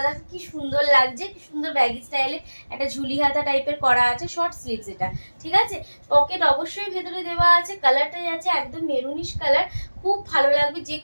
দেখো কি সুন্দর লাগছে, কি সুন্দর ব্যাগি স্টাইলে একটা ঝুলি হাতা টাইপের করা আছে, শর্ট স্লিভস এটা, ঠিক আছে। পকেট অবশ্যই ভেতরে দেওয়া আছে, কালারটা যাচ্ছে একদম মেরুনিশ কালার, খুব ভালো লাগবে, যে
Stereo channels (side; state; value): both; inverted; correlation -1.00